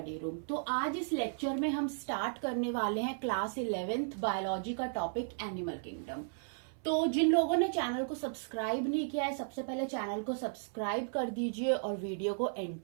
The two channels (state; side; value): silent; left; 55 dB below the other